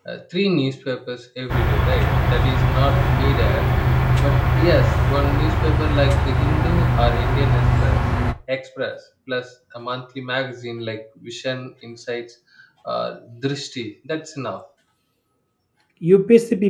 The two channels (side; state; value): both; identical; correlation 1.00